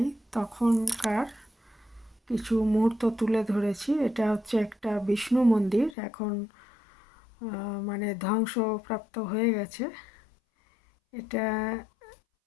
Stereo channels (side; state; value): right; drops out; at 6.0 s